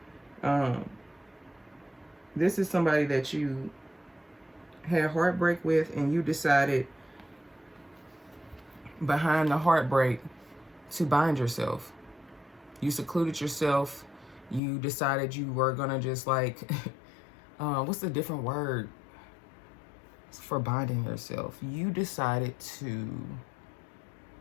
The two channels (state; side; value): drops out; right; at 14.6 s